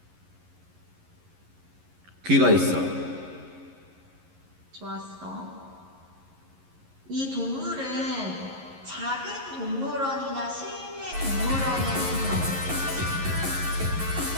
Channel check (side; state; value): left; late; 11 ms